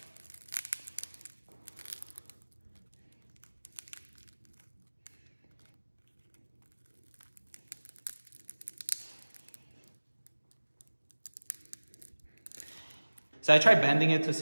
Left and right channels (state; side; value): inverted; both; correlation -1.00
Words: So I tried bending it to